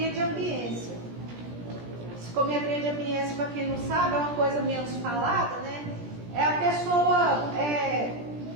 de ambiência. Psicometria de ambiência, para quem não sabe, é uma coisa menos falada, né? É a pessoa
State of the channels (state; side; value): late; left; 17 ms